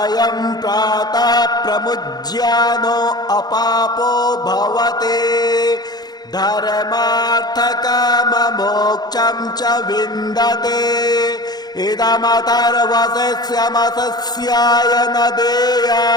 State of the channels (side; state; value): right; late; 0.19 ms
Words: प्रातः प्रमुज्यानो अपापो भवते धर्मार्थकाममोक्षं च विन्दते इदमथर्वशिष्यमसस्याय न